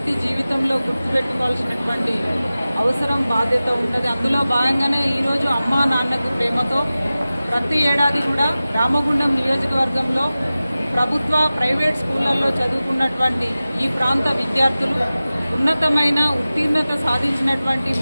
జీవితంలో గుర్తుపెట్టుకోవాల్సినటువంటి అవసరం, బాధ్యత ఉంటుంది. అందులో భాగంగానే ఈరోజు అమ్మా నాన్నకు ప్రేమతో ప్రతి ఏడాది కూడా రామగుండం నియోజకవర్గంలో ప్రభుత్వ, ప్రైవేట్ స్కూళ్లలో చదువుకున్నటువంటి ఈ ప్రాంత విద్యార్థులు, ఉన్నతమైన ఉత్తీర్ణత సాధించినటువంటి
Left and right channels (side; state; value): both; inverted; correlation -0.96